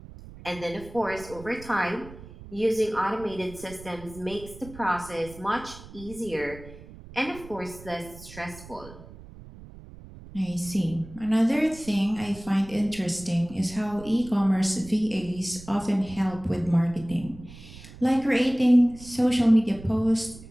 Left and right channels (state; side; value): noise; right; rumble, 17 dB below the sound